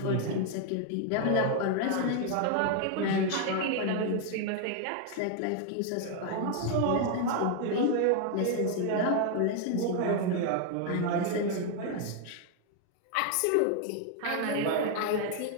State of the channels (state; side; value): different; both; correlation 0.00